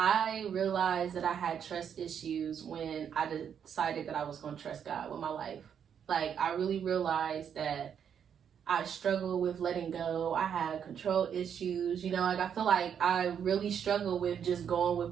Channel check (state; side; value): quieter; left; 8.1 dB